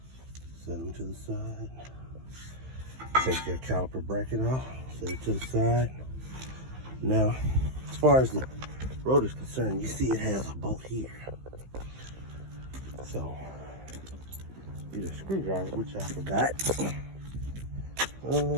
Set them to the side. Take your caliper bracket off. Set it to the side. Now, as far as the rotor is concerned, you see it has a bolt here. So, get a screwdriver, which I forgot. Oh,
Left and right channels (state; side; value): late; left; 15 ms